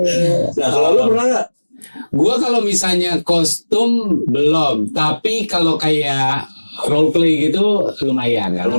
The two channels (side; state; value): both; inverted; correlation -1.00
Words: Nah, kalau lu pernah nggak? Gua kalau misalnya kostum belum, tapi kalau kayak role play gitu lumayan kan